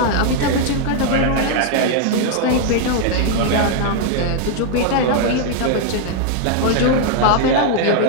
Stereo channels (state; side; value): different; both; correlation 0.00